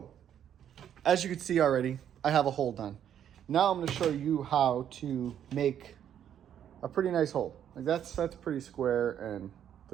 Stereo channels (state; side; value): quieter; left; 9.7 dB